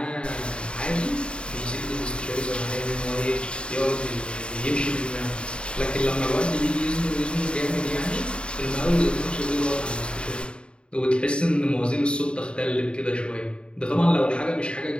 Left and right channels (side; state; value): right; late; 0.053 ms